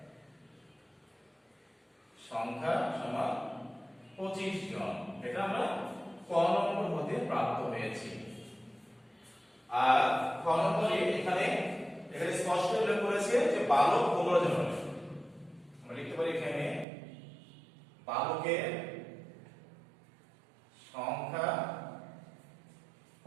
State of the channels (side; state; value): left; drops out; at 16.9 s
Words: সংখ্যা সমান 25 জন, এটা আমরা ক নম্বর হতে প্রাপ্ত হয়েছি। আর খ নম্বরে এখানে স্পষ্ট উল্লেখ করেছে যে বালক 15 জন হবে। আমরা লিখতে পারি এখানে বালকের সংখ্যা